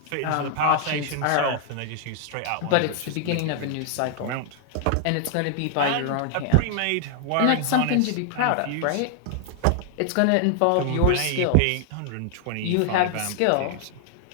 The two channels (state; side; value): different; both; correlation 0.00